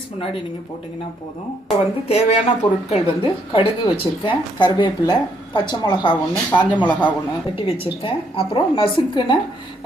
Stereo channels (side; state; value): both; normal; correlation 0.72